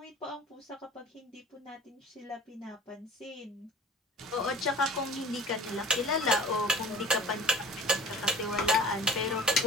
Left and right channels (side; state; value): both; normal; correlation 0.44